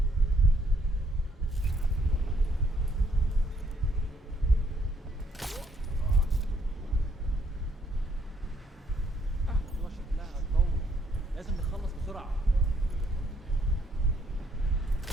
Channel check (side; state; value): both; normal; correlation 0.69